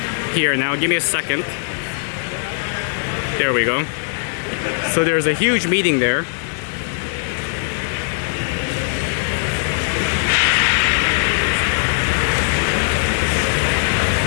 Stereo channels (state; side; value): silent; right; digital silence